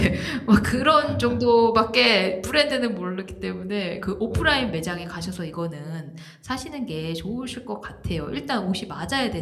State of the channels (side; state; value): both; identical; correlation 1.00